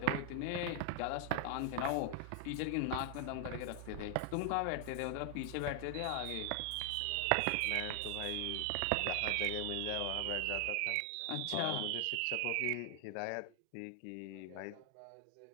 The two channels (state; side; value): different; both; correlation 0.00